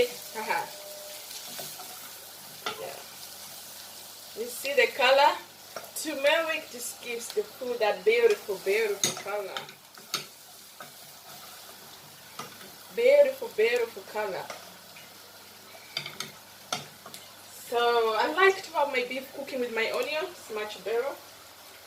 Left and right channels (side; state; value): both; identical; correlation 1.00